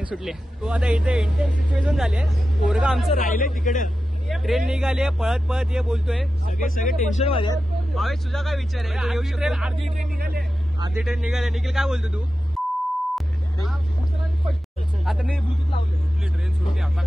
तो आता इथे इंटेन्स सिच्युएशन झाली आहे, पोरगा आमचं राहिले तिकडे, ट्रेन निघाली आहे पळत ये बोलतोय, सगळे टेन्शन मध्ये आहेत। भावेश तुझा काय विचार आहे? तू येऊ शकतो? अर्धी ट्रेन निघाली। निखिल काय बोलतो तू? आता मी ब्लूटूथ लावले, ट्रेन सुटली आता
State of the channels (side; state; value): both; normal; correlation 0.92